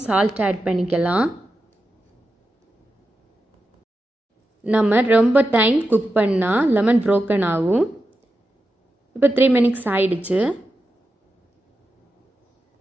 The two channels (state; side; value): normal; both; correlation 0.90